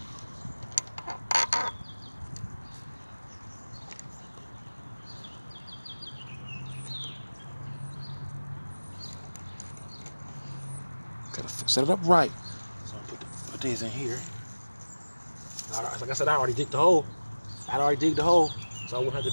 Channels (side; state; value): both; inverted; correlation -1.00